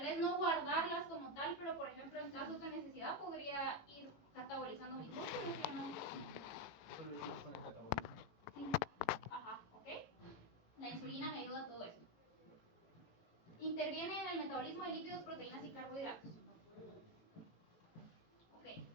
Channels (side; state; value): right; late; 18 ms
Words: vez no guardarlas como tal, pero por ejemplo en casos de necesidad podría ir catabolizando mis músculos, ¿sí o no? Solo eso con el catabolismo. Sí, ajá, ok. La insulina me ayuda a todo esto. Interviene en el metabolismo de lípidos, proteínas y carbohidratos.